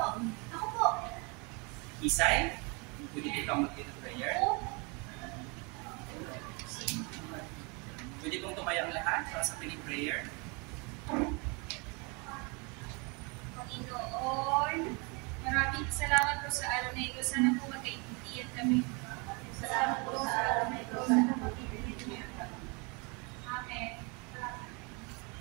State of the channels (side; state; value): left; quieter; 31.0 dB